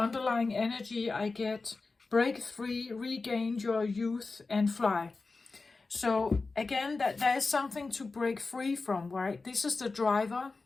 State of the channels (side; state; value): right; quieter; 3.9 dB